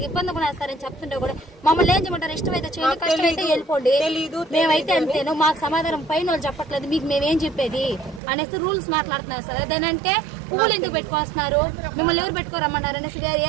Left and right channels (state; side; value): drops out; left; at 8.2 s